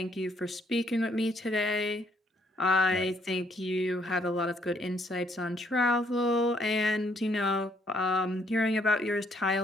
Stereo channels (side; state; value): both; normal; correlation 0.68